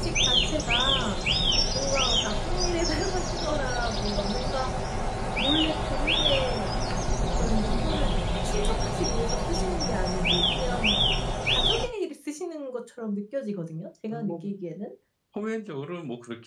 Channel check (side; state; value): both; identical; correlation 1.00